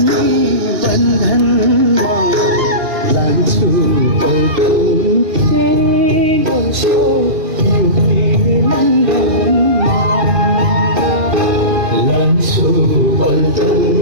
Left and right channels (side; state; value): left; late; 2.8 ms